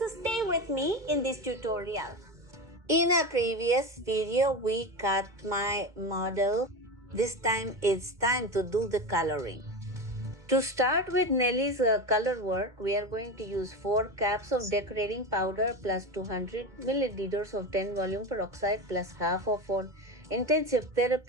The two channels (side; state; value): left; late; 2.2 ms